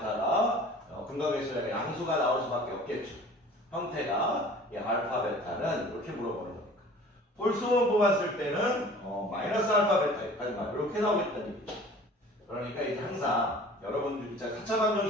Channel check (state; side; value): normal; both; correlation 0.46